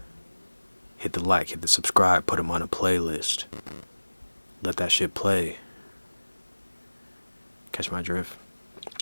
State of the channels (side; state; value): both; inverted; correlation -1.00